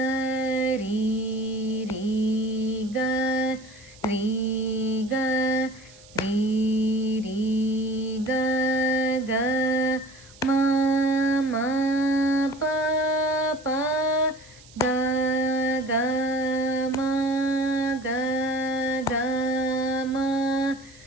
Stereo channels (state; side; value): noise; right; hiss, 24 dB below the sound